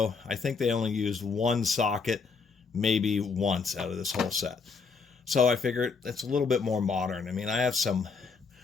I think they only used one socket maybe once out of this whole set. So I figured it's a little bit more modern. I mean, I have some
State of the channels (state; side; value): quieter; right; 5.0 dB